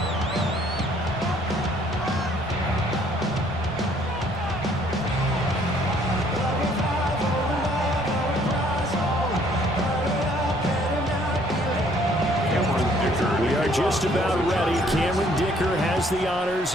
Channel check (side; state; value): left; noise; rumble, 18 dB below the sound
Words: Just about ready. Cameron Dicker has the